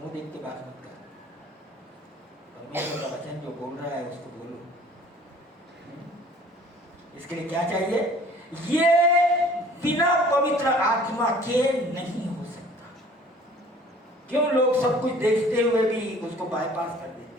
देख के बात मत कर, परमेश्वर का वचन जो बोल रहा है उसको बोलो। इसके लिए क्या चाहिए? ये बिना पवित्र आत्मा के नहीं हो सकता। क्यों? लोग सब कुछ देखते हुए भी उसको बाईपास कर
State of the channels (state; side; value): normal; both; correlation 0.51